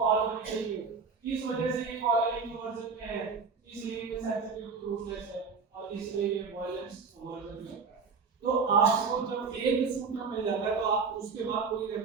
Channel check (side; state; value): left; quieter; 5.2 dB